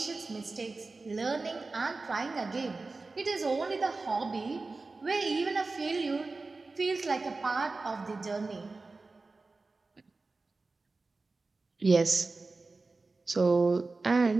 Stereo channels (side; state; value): left; quieter; 3.6 dB